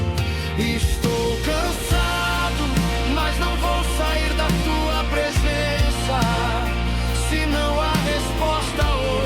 Estou cansado, mas não vou sair da tua presença. Se não há resposta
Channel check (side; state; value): both; identical; correlation 1.00